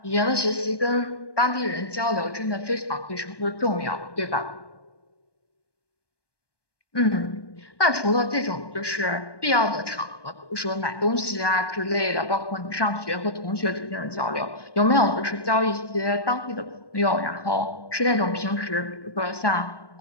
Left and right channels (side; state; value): right; late; 1.2 ms